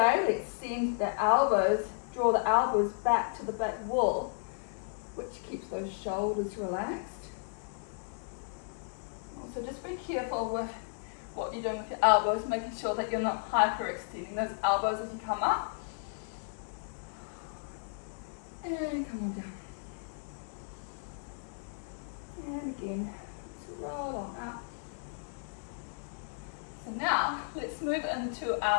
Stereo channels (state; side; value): silent; right; digital silence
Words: let's send the elbows, draw the elbows back to the back wall, which keeps those shoulders relaxed. Also, just be careful with what you're doing with your elbows, making sure that you're not hyperextending those elbows as you come up. And come on down. And again, roll on up. So now, let's move into